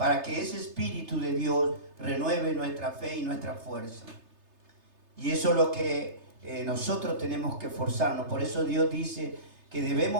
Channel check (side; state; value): left; late; 3.3 ms